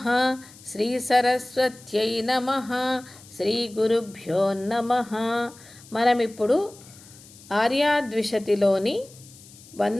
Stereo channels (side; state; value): left; noise; hiss, 22 dB below the sound